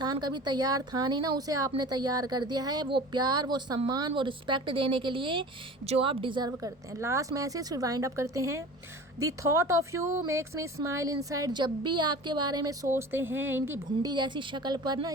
कभी तैयार था नहीं ना, उसे आपने तैयार कर दिया है। वो प्यार, वो सम्मान, वो रिस्पेक्ट देने के लिए जो आप डिज़र्व करते हैं। लास्ट मैसेज फिर वाइंड अप करते हैं। The thought of you makes me smile inside. जब भी आपके बारे में सोचते हैं, इनकी भुंडी जैसी शक्ल पर ना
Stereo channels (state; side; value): normal; both; correlation 0.38